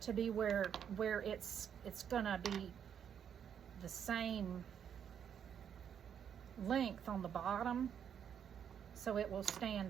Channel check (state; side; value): quieter; left; 8.4 dB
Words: to be where it's gonna be the same length on the bottom, so it will